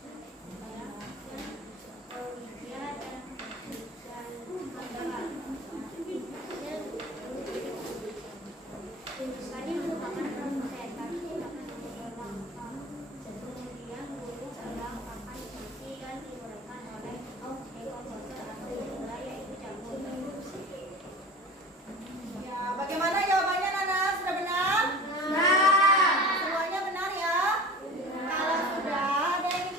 Kami merupakan produsen. Kami tidak akan kemudian guru sedang akan diisi dan diberikan oleh ekonomi atau pengurai yaitu jagung. Ya, bagaimana jawabannya Nana? Sudah benar? Semuanya benar ya? Kalau sudah, ada yang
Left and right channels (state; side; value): normal; both; correlation 0.38